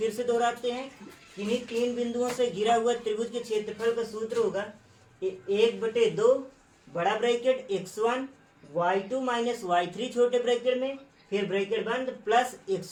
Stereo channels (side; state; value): both; identical; correlation 1.00